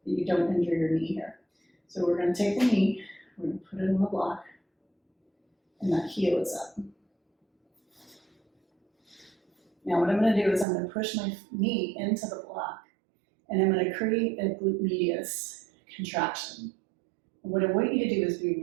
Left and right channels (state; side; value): drops out; left; at 10.7 s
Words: you don't injure your knee here. So we're going to take the knee, we're going to put it on the block, and that heel is up. Now what I'm going to do is I'm going to push my knee into the block, and I'm going to create a glute medius contraction. And what I want you to do is be